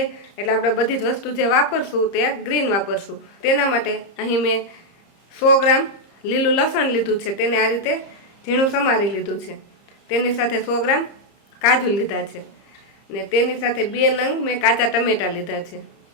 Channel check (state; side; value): late; right; 30 ms